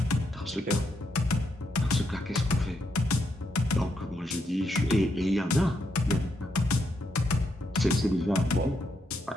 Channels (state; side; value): normal; both; correlation 0.79